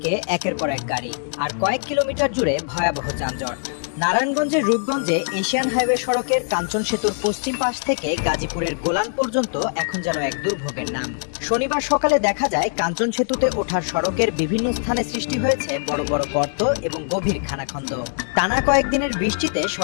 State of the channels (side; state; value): right; silent; 64 dB below the other